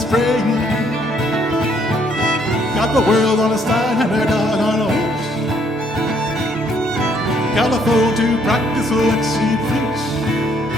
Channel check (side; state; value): both; normal; correlation 0.68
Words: Got the world on a style and her dog on a leash. Got a fool to practice what she preach.